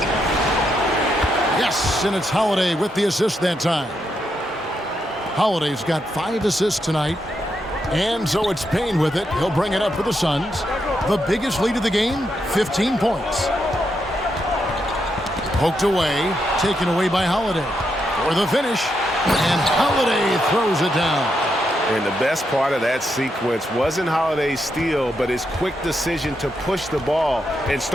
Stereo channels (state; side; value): normal; both; correlation 0.81